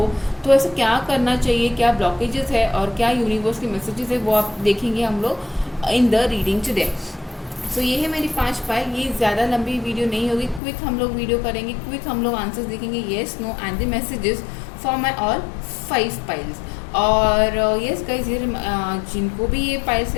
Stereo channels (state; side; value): drops out; right; at 10.6 s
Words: तो ऐसा क्या करना चाहिए, क्या ब्लॉकेजेस है और क्या यूनिवर्स के मैसेजेस है, वो आप देखेंगे हम लोग इन द रीडिंग टुडे। सो ये है मेरी 5 पाइल। ये ज़्यादा लंबी वीडियो नहीं होगी, क्विक हम लोग वीडियो करेंगे, क्विक हम लोग आंसर्स देखेंगे yes no and the messages for my all 5 piles. और येस गाइज, ये जिनको भी ये पाइल